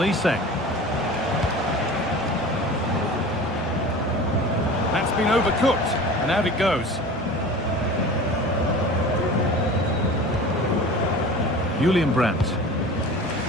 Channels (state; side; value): normal; both; correlation 0.37